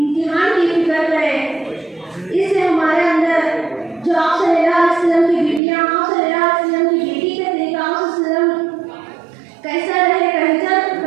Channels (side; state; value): left; drops out; at 5.6 s